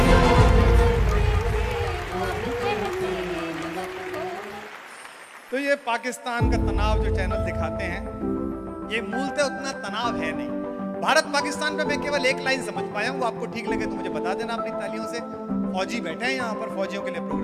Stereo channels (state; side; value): identical; both; correlation 1.00